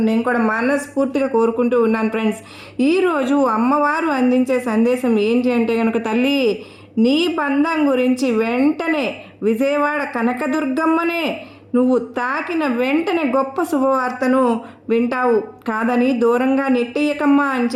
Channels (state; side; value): identical; both; correlation 1.00